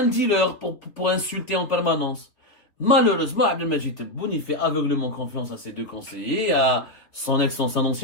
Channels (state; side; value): late; right; 3.1 ms